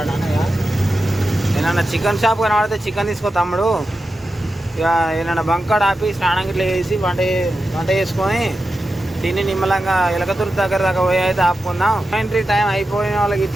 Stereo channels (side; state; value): both; normal; correlation 0.91